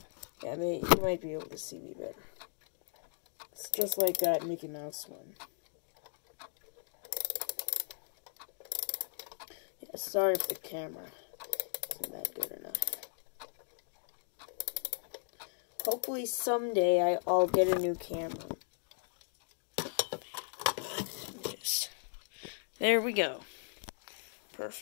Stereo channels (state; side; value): silent; right; digital silence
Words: yeah, you might be able to see me better. It's just like that Mickey Mouse one. Yeah, sorry for the camera. Isn't that good enough? Hopefully someday I'll get a new camera. There we go.